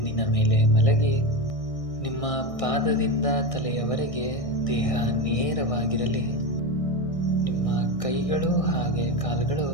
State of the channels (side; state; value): right; late; 1.6 ms